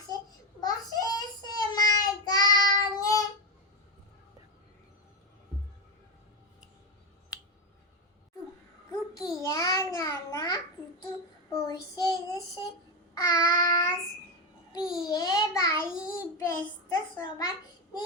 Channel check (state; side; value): normal; both; correlation 0.11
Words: বসে সে মার গানে। টুকিয়া নানা পুতুল বসে দেশে আস, বিয়ে বাড়ি ব্যস্ত সবাই